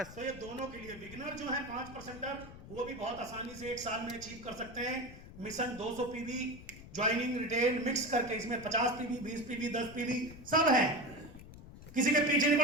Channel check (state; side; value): noise; left; rumble, 16 dB below the sound